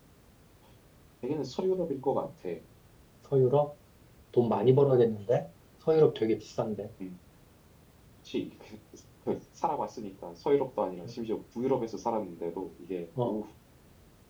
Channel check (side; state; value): both; identical; correlation 1.00